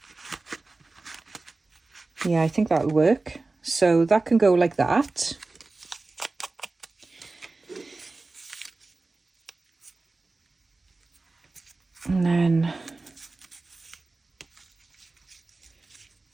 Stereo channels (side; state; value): left; quieter; 3.4 dB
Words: Yeah, I think that'll work. So that can go like that. And then